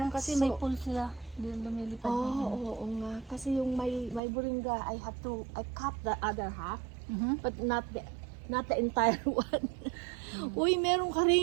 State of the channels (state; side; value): drops out; left; at 4.2 s